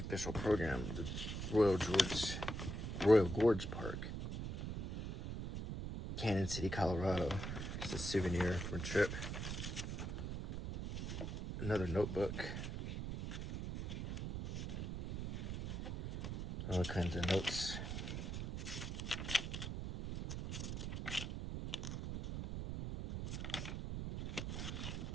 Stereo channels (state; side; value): noise; right; rumble, 4 dB below the sound